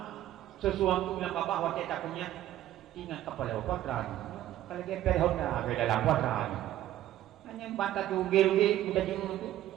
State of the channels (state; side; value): quieter; left; 13.2 dB